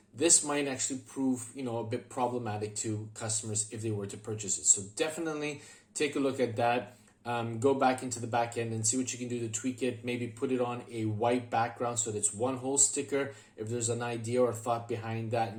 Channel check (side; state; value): both; identical; correlation 1.00